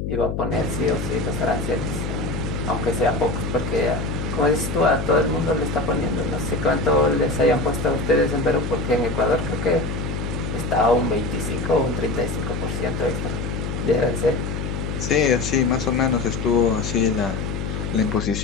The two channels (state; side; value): noise; left; hum, 4 dB below the sound